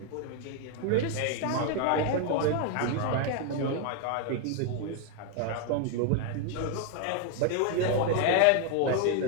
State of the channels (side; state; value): both; different; correlation 0.01